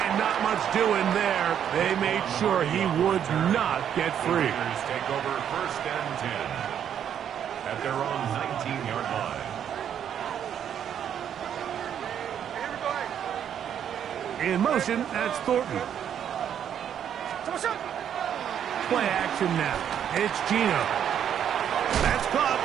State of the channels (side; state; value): left; quieter; 9.2 dB